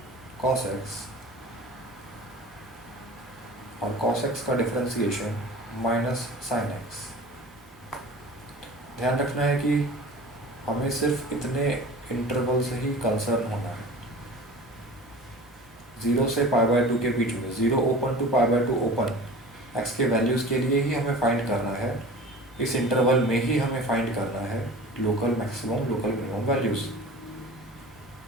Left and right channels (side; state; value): right; noise; hum, 30 dB below the sound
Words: कॉस एक्स और कॉस एक्स का डिफरेंशिएशन माइनस साइन एक्स। ध्यान रखना है कि हमें सिर्फ इतने इंटरवल से ही कंसर्न होना है, 0 से π/2 के बीच में, 0 ओपन टू π/2 ओपन, एक्स के वैल्यूज़ के लिए ही हमें फाइंड करना है। इस इंटरवल में ही हमें फाइंड करना है local maximum local minimum values.